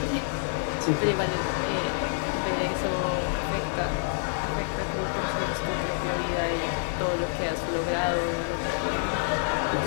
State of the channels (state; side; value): silent; right; 57 dB below the other